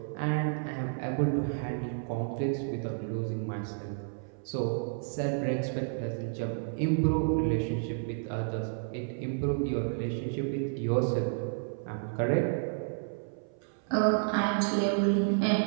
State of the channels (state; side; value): silent; left; 57 dB below the other